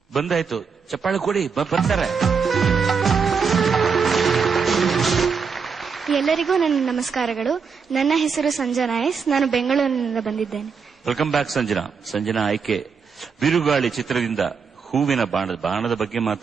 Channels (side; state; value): left; quieter; 5.8 dB